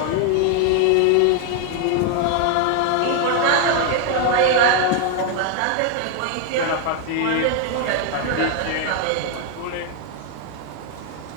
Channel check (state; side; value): different; both; correlation 0.01